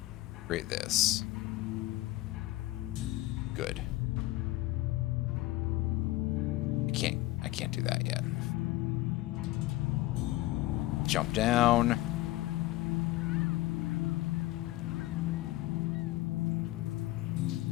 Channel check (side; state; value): right; quieter; 17.8 dB